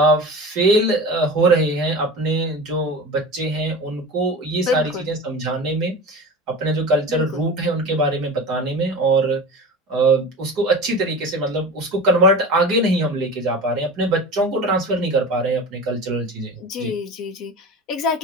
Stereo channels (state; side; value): normal; both; correlation 0.32